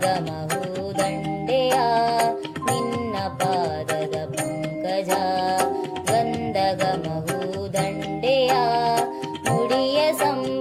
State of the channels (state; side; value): identical; both; correlation 1.00